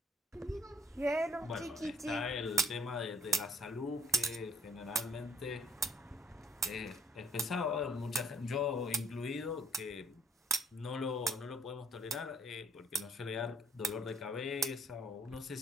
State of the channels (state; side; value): normal; both; correlation 0.64